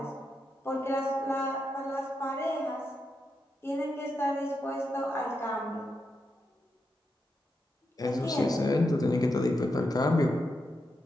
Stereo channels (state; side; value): normal; both; correlation 0.85